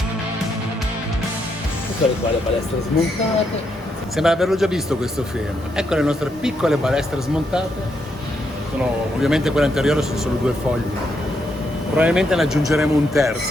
Eccole qua le balestre smontate. Sembra averlo già visto questo film. Ecco le nostre piccole balestre smontate. Sono ovviamente quelle anteriori, sono solo 2 fogli. Probabilmente ne aggiungeremo un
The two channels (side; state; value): both; normal; correlation 0.79